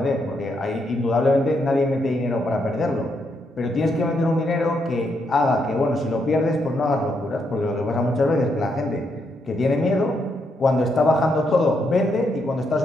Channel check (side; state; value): both; normal; correlation 0.78